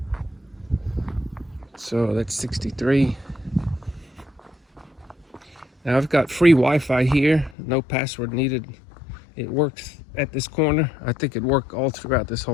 So that's 63. Now I've got free Wi-Fi here, no password needed. It works at this corner. I think it worked all throughout this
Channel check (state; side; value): drops out; right; at 7.6 s